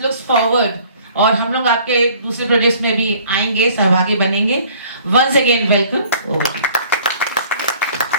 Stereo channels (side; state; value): both; inverted; correlation -0.54